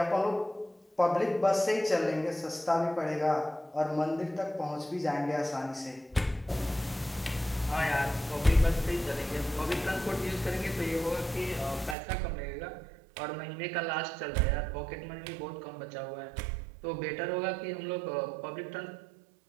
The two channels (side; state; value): left; drops out; at 12.0 s